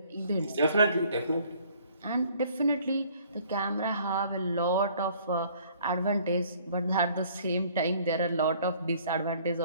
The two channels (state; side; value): inverted; both; correlation -0.58